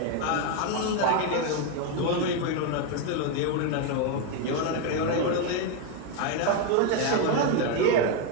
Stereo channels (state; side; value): different; both; correlation 0.01